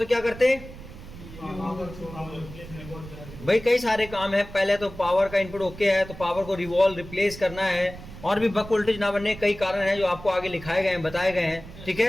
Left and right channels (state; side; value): noise; right; rumble, 15 dB below the sound